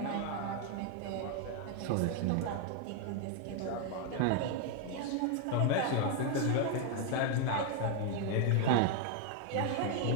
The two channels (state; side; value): different; both; correlation 0.00